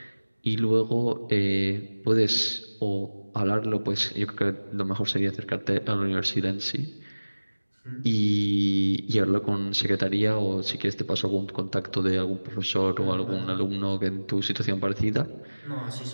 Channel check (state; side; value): inverted; both; correlation -1.00